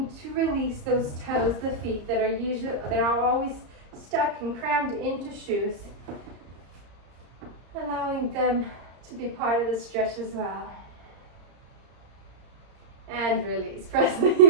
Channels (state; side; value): late; left; 34 ms